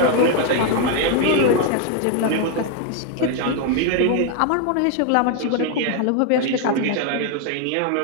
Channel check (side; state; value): both; different; correlation 0.01